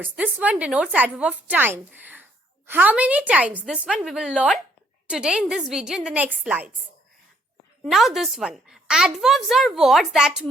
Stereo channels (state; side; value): normal; both; correlation 0.66